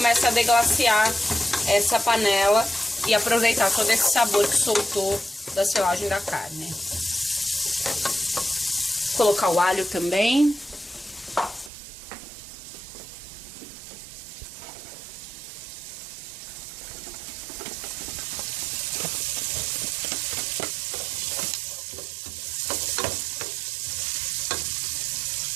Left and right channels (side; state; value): left; drops out; at 11.7 s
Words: a deglaciar essa panela e aproveitar todo esse sabor que soltou da selagem da carne. Vou colocar o alho também.